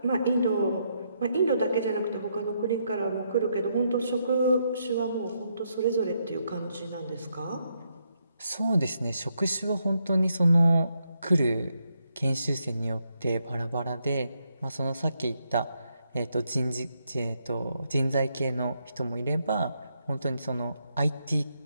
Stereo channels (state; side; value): inverted; both; correlation -0.78